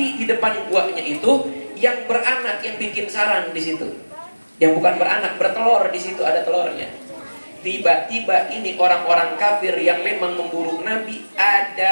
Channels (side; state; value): both; inverted; correlation -1.00